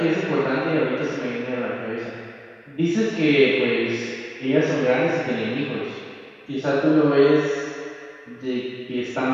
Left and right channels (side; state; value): both; identical; correlation 1.00